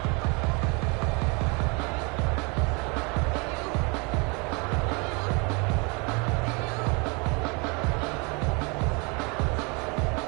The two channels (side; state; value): left; quieter; 30.6 dB